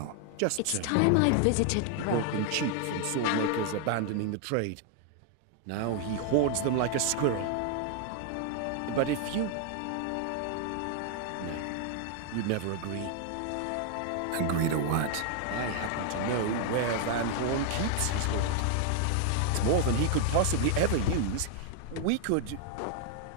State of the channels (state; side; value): different; both; correlation 0.00